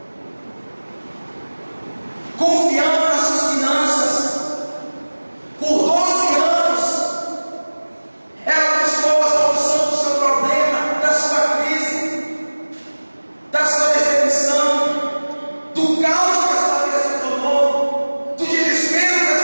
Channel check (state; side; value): inverted; both; correlation -1.00